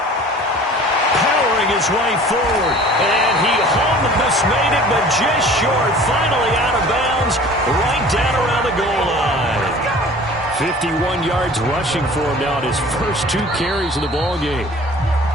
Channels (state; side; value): normal; both; correlation 0.46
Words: Powering his way forward. And he almost made it, but just short. Finally out of bounds, right down around the goal line. 51 yards rushing for him now at his first 2 carries of the ball game.